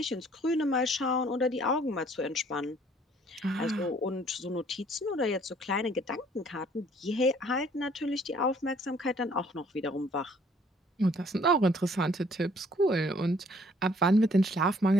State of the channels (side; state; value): both; normal; correlation 0.60